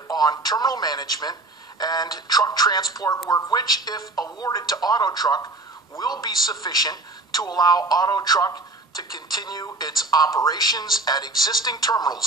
on terminal management and truck transport work, which, if awarded to Auto Truck, will be sufficient to allow Auto Truck to continue its operations at existing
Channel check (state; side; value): quieter; left; 3.0 dB